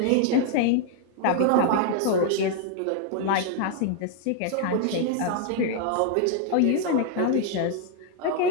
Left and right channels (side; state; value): both; different; correlation 0.00